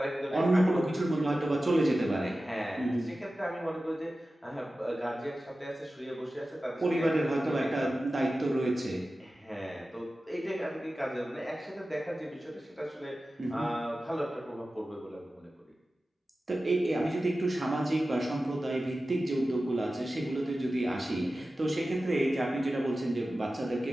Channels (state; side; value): normal; both; correlation 0.95